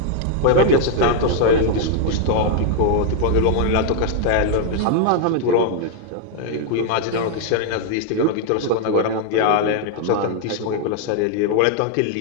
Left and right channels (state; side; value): different; both; correlation 0.00